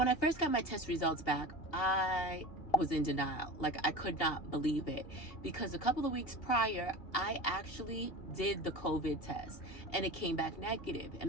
I first got my test results back, I was in denial. Like, I could not believe it, because a couple of weeks prior I actually did the COVID test and it came back negative.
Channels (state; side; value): late; right; 2.8 ms